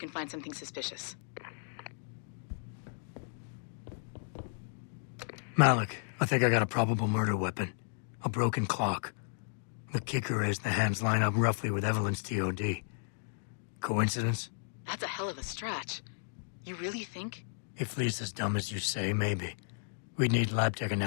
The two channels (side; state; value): right; silent; digital silence